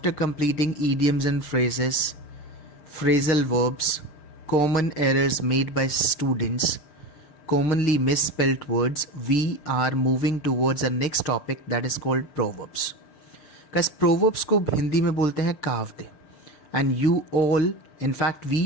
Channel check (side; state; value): right; late; 6.7 ms